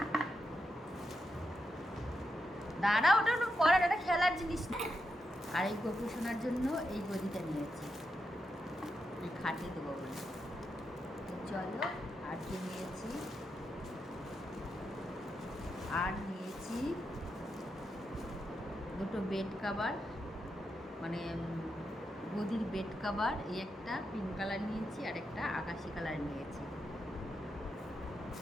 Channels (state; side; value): normal; both; correlation 0.85